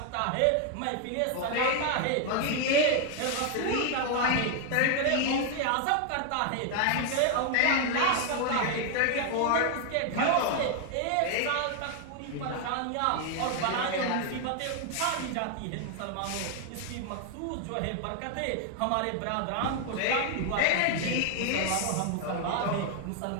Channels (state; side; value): different; both; correlation 0.00